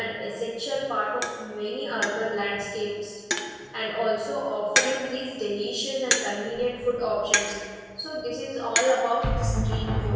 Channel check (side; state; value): both; identical; correlation 1.00